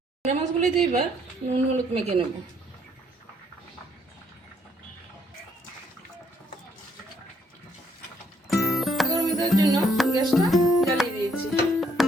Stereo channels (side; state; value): both; normal; correlation 0.68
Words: ট্যাংরা মাছগুলিতে এবার নুন হলুদ মেখে নেব। গরম দেওয়ার জন্য গ্যাসটা জ্বালিয়ে দিয়েছি।